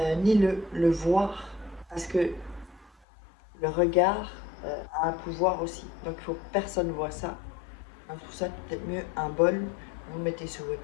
ni le voir, parce que le regard a un pouvoir aussi. Donc, il faut que personne ne voit ça. Donc, pour ça, peut-être mieux un bol, vous le mettez sur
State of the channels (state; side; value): drops out; right; at 2.9 s